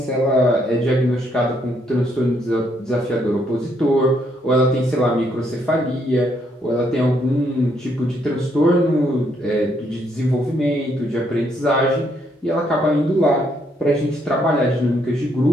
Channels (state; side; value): normal; both; correlation 0.72